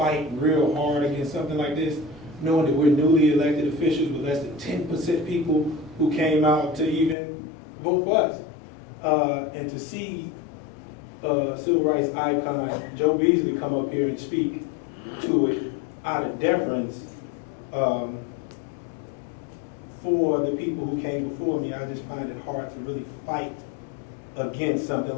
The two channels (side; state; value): right; drops out; at 7.2 s